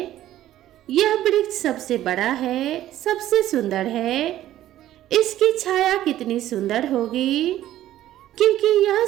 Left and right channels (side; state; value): left; quieter; 13.3 dB